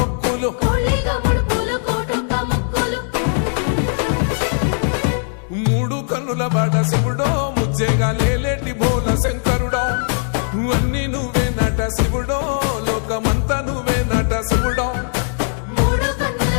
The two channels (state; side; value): silent; right; 66 dB below the other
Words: మూడు కన్నుల వాడ శివుడో ముజ్జేగా లేలేటి బోల శంకరుడో అన్ని నువ్వే నట శివుడో లోకమంతా నువ్వే నట శివుడో